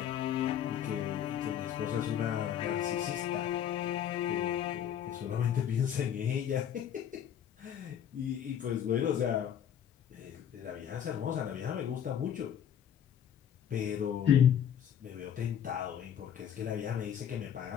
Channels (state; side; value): quieter; right; 9.4 dB